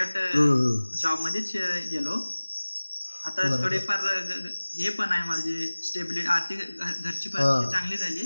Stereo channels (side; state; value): both; inverted; correlation -1.00